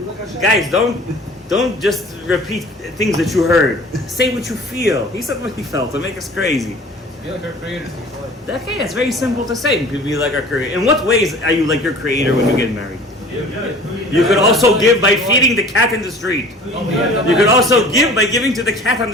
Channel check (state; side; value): normal; both; correlation 0.45